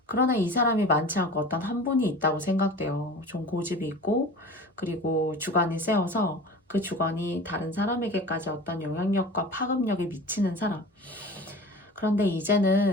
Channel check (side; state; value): both; normal; correlation 0.37